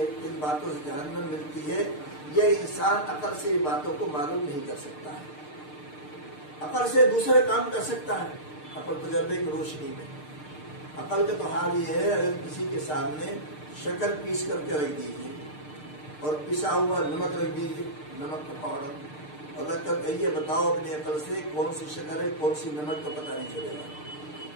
کن باتوں سے جہنم ملتی ہے. یہ انسان عقل سے ان باتوں کو معلوم نہیں کر سکتا ہے. عقل سے دوسرے کام کر سکتا ہے، عقل تجربے کی روشنی میں. عقل کا تو حال یہ ہے، اگر کسی کے سامنے شکر پیس کر کے رکھ دیجیے اور پسا ہوا نمک رکھ دیجیے، نمک کا پاؤڈر، اور رکھ کر کہیے بتاؤ اپنی عقل سے کون سی شکر ہے کون سی نمک، تو پتہ نہیں چلے گا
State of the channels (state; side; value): late; right; 6.6 ms